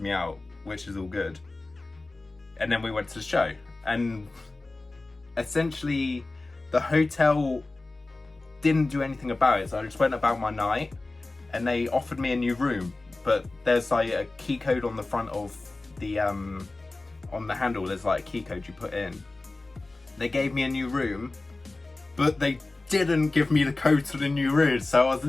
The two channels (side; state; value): right; quieter; 3.1 dB